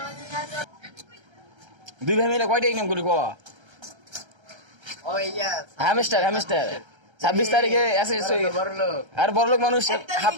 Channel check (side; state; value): left; late; 1.3 ms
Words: দুই ভাই মিলে কয়টা ইনকাম করি ক হামিস্টার হামিস্টার 26 তারিখে এসে আর বড়লোক মানুষ হাফ